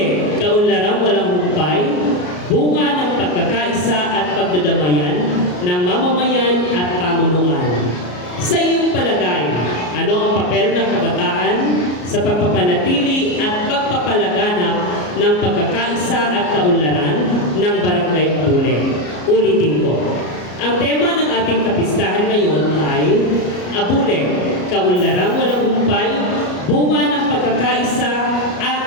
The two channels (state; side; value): late; right; 33 ms